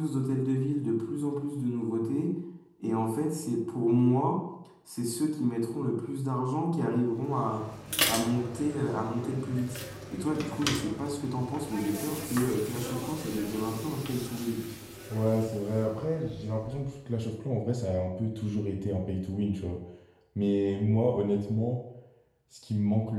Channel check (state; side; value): identical; both; correlation 1.00